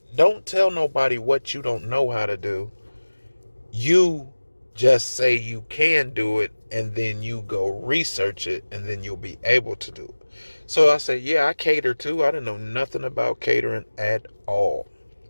don't tell nobody what you don't know how to do. You just say you can do it, and then you go research it, and then you'll be able to do it. So I said, yeah, I cater too. I didn't know nothing about catering at all.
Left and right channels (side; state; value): both; inverted; correlation -1.00